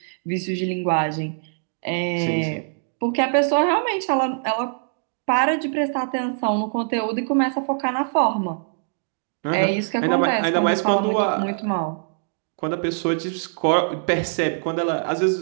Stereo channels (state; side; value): silent; left; digital silence